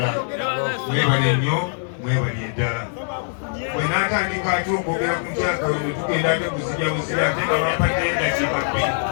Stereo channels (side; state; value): right; silent; digital silence